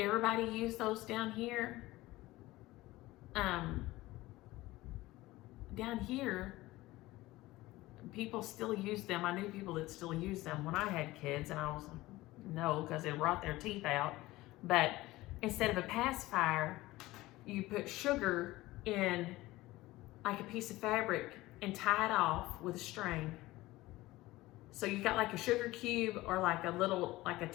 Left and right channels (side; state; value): right; quieter; 18.5 dB